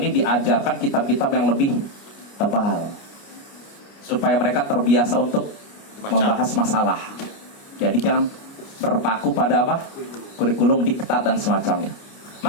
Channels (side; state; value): right; late; 29 ms